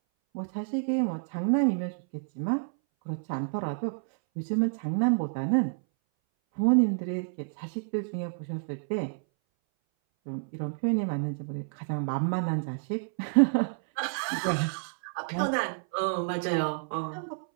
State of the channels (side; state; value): left; silent; 58 dB below the other